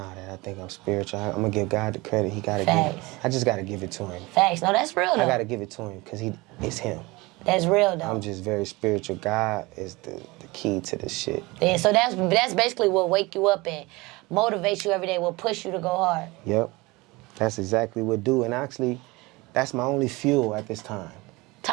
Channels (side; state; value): left; quieter; 23.0 dB